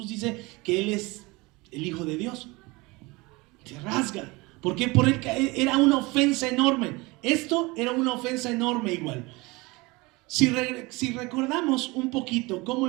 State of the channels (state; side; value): quieter; left; 23.9 dB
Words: dice que Él es el Hijo de Dios, se rasga. ¿Por qué? Porque era una ofensa enorme. Esto era una ofensa enorme igual. Si recordamos un poquito cómo